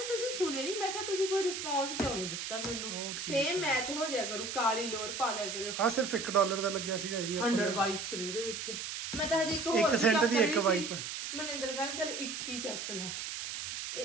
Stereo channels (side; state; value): right; noise; hiss, 5 dB below the sound